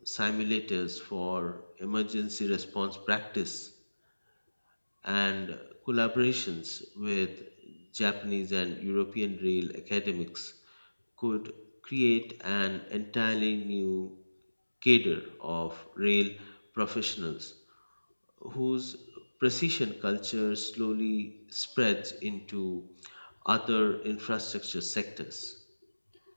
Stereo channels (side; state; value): both; inverted; correlation -1.00